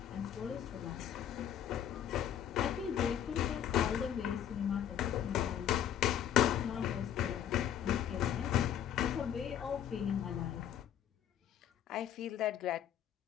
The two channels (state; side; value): quieter; right; 10.1 dB